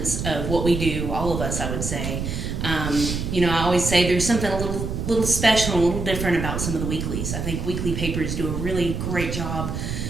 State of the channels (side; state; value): right; noise; rumble, 3 dB below the sound